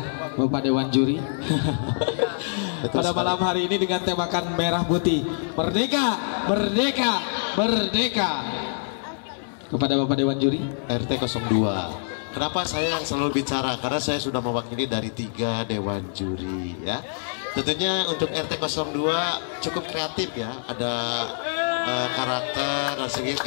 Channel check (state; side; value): silent; right; 58 dB below the other